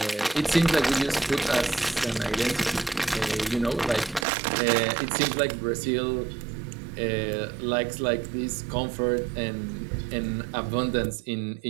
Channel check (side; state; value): left; drops out; at 4.2 s